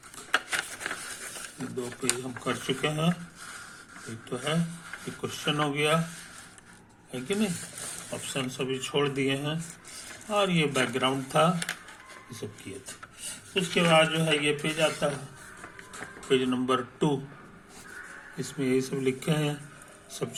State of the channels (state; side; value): identical; both; correlation 1.00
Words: ये दो पेज हम कर चुके हैं, एक तो है ये क्वेश्चन हो गया, है कि नहीं? ऑप्शन सभी छोड़ दिए हैं और ये बैकग्राउंड था, ये सब किए थे। उसके बाद जो है ये पेज आता है, पेज नंबर 2, इसमें यही सब लिखे हैं, सब